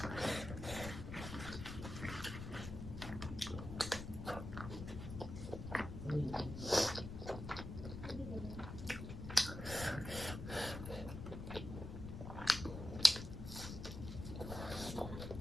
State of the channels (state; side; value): noise; left; rumble, 7 dB below the sound